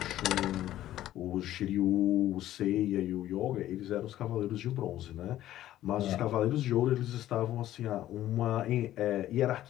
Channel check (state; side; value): quieter; right; 13.5 dB